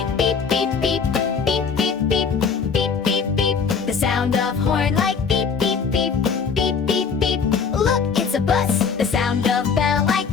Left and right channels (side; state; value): right; quieter; 5.9 dB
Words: beep, beep, beep, beep, beep, beep, beep, beep, beep. The sound of horn like beep, beep, beep, beep, beep, beep. Look, it's a bus. The sound of bell like